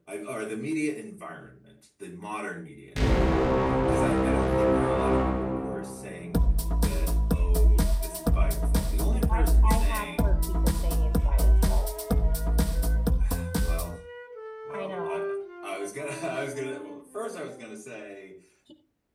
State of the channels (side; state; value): both; identical; correlation 1.00